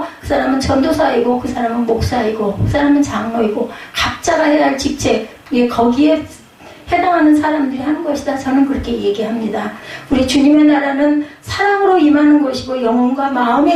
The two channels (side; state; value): both; identical; correlation 1.00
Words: 그 사람은 전도사이고, 그 사람은 목사이고, 그 사람은 장로이고, 각자가 해야 할 직책, 거기에 해당하는 사람들이 하는 것이다. 저는 그렇게 얘기합니다. 우리 주님의 나라는 사랑으로 임하는 것이고, 영혼과